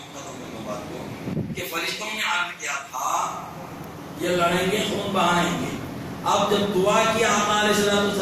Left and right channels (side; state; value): both; identical; correlation 1.00